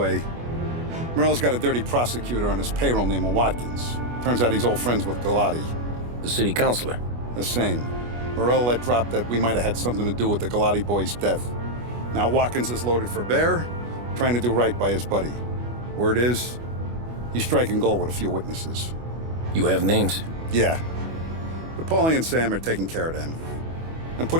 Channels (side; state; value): left; late; 25 ms